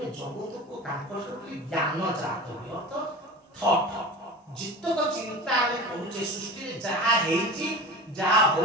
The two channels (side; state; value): both; normal; correlation 0.34